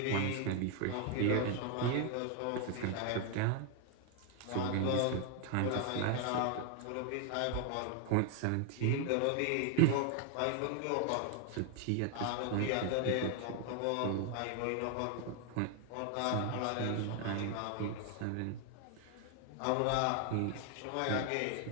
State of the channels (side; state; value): both; different; correlation 0.00